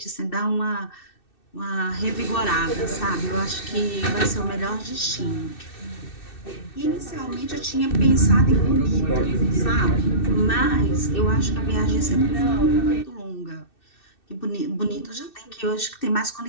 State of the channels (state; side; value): late; right; 2.6 ms